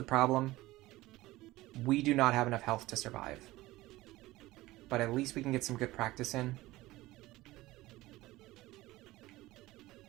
problem. We do not have enough health to survive. But at least we can get some good practice in.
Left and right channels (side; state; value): left; quieter; 18.2 dB